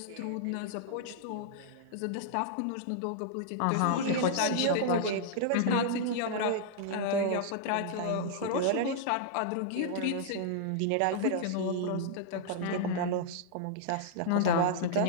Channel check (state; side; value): different; both; correlation -0.01